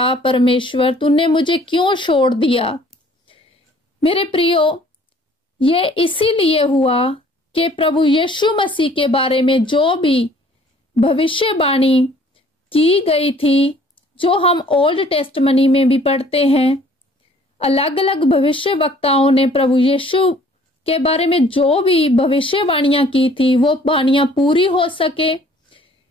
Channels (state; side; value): normal; both; correlation 0.56